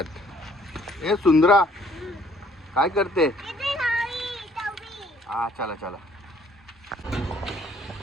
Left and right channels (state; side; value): normal; both; correlation 0.62